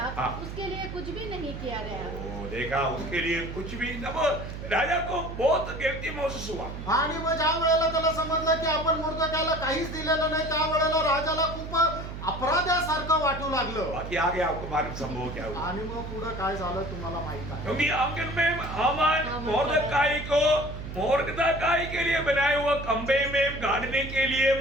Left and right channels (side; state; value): right; noise; hum, 8 dB below the sound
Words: हाँ। उसके लिए कुछ भी नहीं किया गया। वो देखा उसके लिए कुछ भी तब राजा को बहुत गिल्टी महसूस हुआ। आणि मग ज्या वेळेला त्याला समजलं की आपण मोर्दकायला काहीच दिलेलं नाही त्या वेळेला राजाला खूप अपराध्यासारखं वाटू लागलं। बाकी आगे आपको मालूम संभव क्या हुआ। आणि मग पुढे काय झालं तुम्हाला माहित आहे। क्योंकि आंगन में हामान मोर्दकाई को मोर्दकाई के लिए बनाए हुए खंबे में गाड़ने के लिए